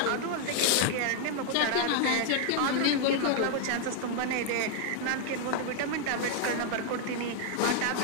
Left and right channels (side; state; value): both; different; correlation 0.00